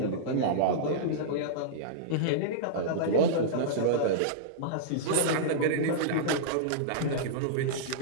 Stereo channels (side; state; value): both; different; correlation -0.03